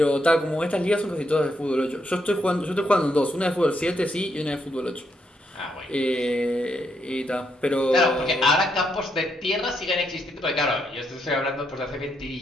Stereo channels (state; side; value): normal; both; correlation 0.78